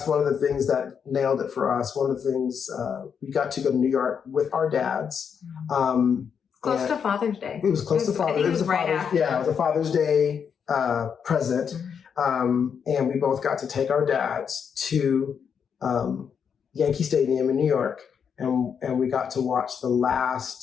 one of the things that nailed it for us, one of the things we got to go to New York with our dads, Close to Father's Day. It was close to Father's Day. It was right after. Yeah, it was a Father's Day present. And we both got to take our dads to Yankee Stadium in New York. And we got to watch the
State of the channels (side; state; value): right; quieter; 7.1 dB